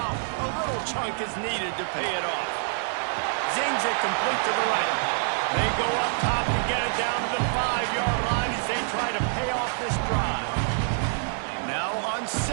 a little chunk is needed to pay it off. Zings it complete to the right. They go up top to get it down to the 5-yard line as they try to pay off this drive. Now on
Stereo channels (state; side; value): silent; left; 57 dB below the other